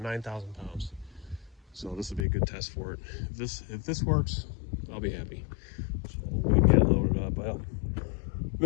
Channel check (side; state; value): right; drops out; at 2.2 s